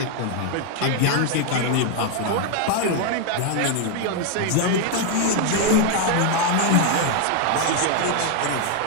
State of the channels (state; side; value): different; both; correlation 0.01